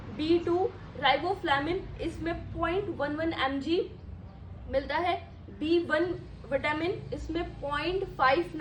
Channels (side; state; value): both; identical; correlation 1.00